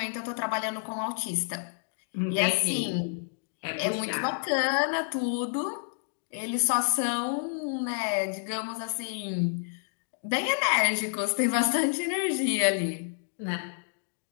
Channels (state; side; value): silent; right; digital silence